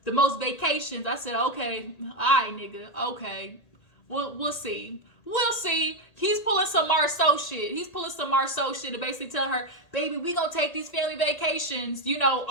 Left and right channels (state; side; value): late; right; 1.8 ms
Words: the most vacations. I said, okay, all right, nigga, okay. We'll see. We'll see. He's pulling some Marceau shit. To basically tell her, baby, we gonna take these family vacations.